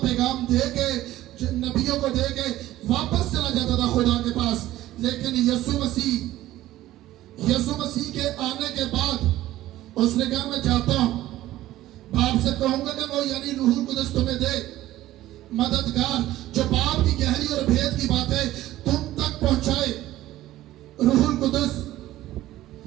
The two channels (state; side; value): quieter; left; 15.0 dB